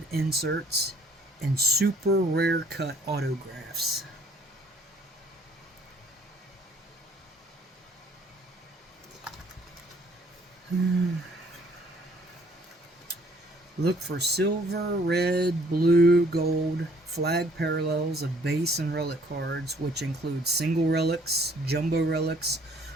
inserts, and super rare cut autographs. Look for silver, red, blue, gold flag parallels of base and relic cards, which include single relics, jumbo relics,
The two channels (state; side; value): normal; both; correlation 0.61